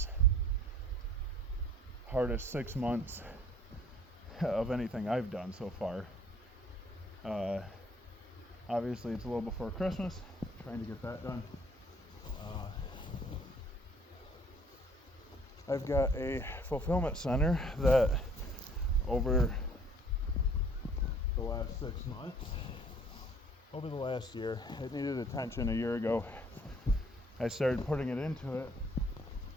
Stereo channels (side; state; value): both; normal; correlation 0.57